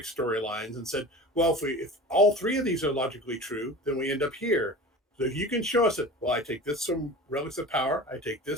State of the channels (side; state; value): both; normal; correlation 0.36